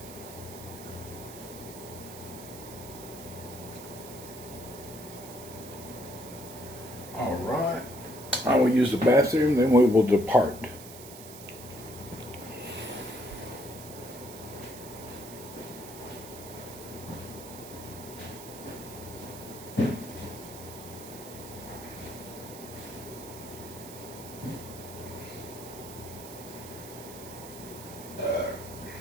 All right. I will use the bathroom, then we will depart.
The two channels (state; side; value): noise; right; hiss, 14 dB below the sound